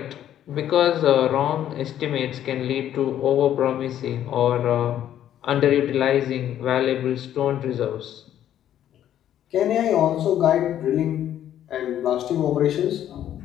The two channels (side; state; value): right; quieter; 11.1 dB